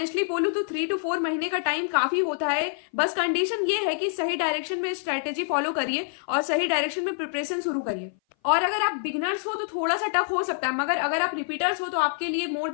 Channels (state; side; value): silent; right; 57 dB below the other